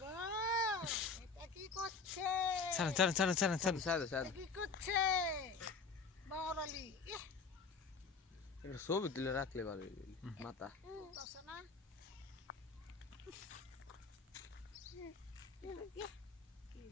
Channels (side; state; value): right; quieter; 4.7 dB